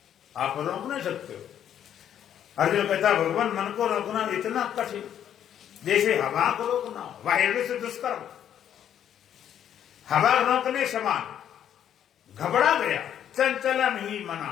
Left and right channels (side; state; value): right; quieter; 9.9 dB